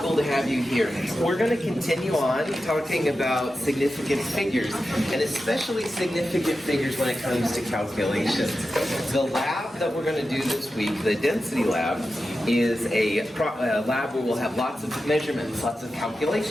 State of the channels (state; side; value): normal; both; correlation 0.91